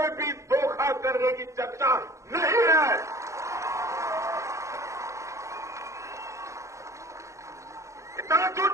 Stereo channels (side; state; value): left; late; 0.15 ms